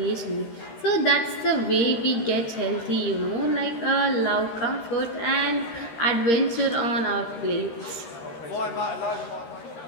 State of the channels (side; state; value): right; late; 13 ms